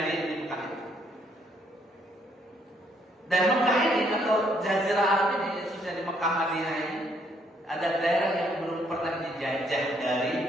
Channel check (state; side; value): normal; both; correlation 0.69